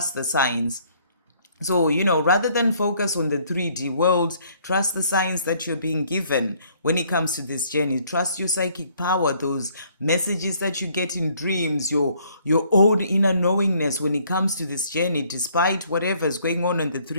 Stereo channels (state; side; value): inverted; both; correlation -0.63